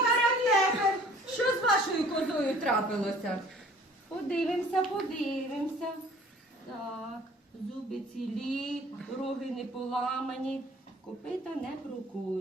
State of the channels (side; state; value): both; normal; correlation 0.52